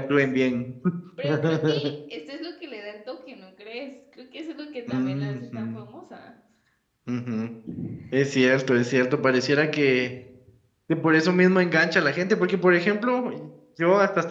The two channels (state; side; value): identical; both; correlation 1.00